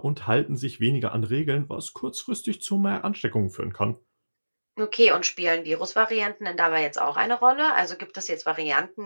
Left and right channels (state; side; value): inverted; both; correlation -1.00